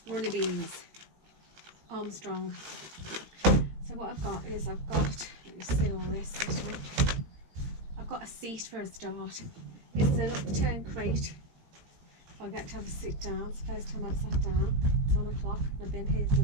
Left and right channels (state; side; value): late; left; 17 ms